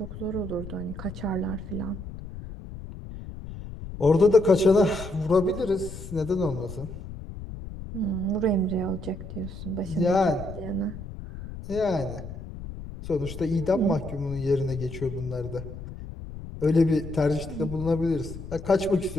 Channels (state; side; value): noise; left; rumble, 11 dB below the sound